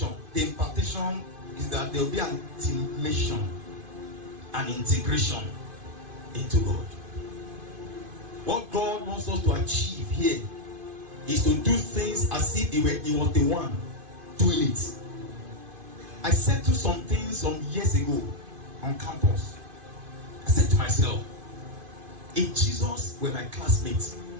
the impartation is that there will be an intimation, an integration into God. What God wants us to achieve here is to do things as if He was the one doing it. I said to some things some years ago on campus. I said to myself, if Jesus were my classmate,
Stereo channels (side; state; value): left; late; 2.5 ms